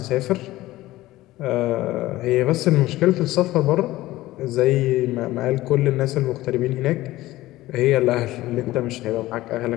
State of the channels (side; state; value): right; quieter; 16.9 dB